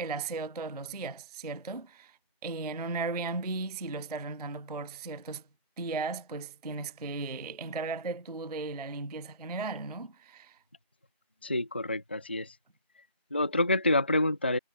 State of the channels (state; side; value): inverted; both; correlation -0.46